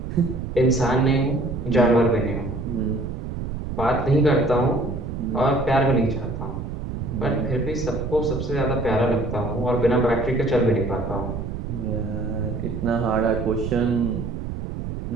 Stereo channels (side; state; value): right; noise; rumble, 6 dB below the sound